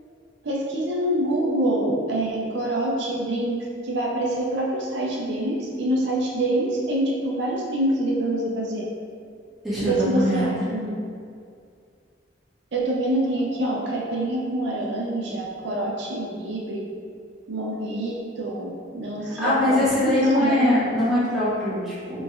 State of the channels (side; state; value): both; normal; correlation 0.42